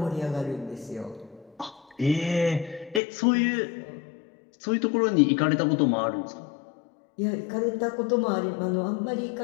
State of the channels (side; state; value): right; drops out; at 3.0 s